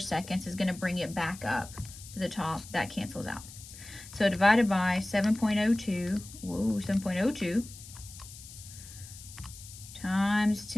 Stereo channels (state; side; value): noise; left; hiss, 16 dB below the sound